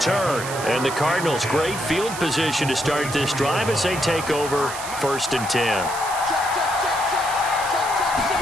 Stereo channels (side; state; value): right; noise; hiss, 10 dB below the sound